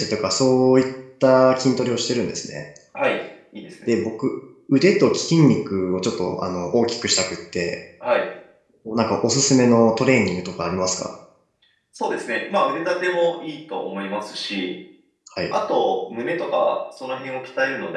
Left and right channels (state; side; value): identical; both; correlation 1.00